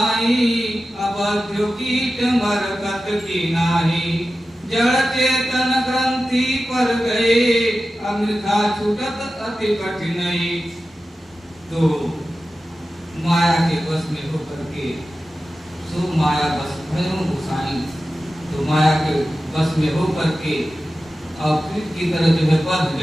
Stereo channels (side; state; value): both; normal; correlation 0.94